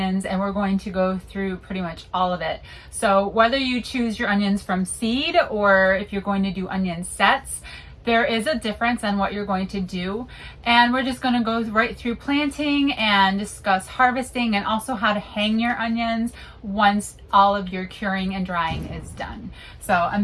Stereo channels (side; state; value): both; identical; correlation 1.00